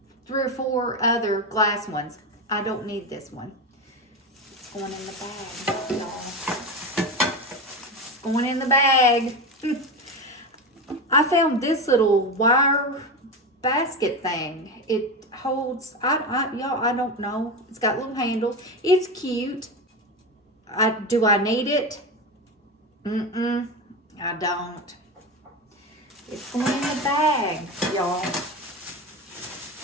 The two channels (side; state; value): both; normal; correlation 0.20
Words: 3 or 4 other glass ones. I don't need this one. It's going in the bag, y'all. It's going in the bag. I found this little wire basket thing. It holds, y'all, I don't know. It's got little handles. It's cute. Do I need it? I don't. It's going in the bag, y'all.